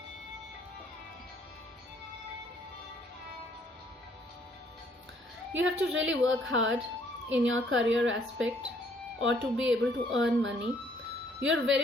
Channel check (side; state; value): both; normal; correlation 0.64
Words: You have to really work hard in your career aspect or to be able to earn money. You're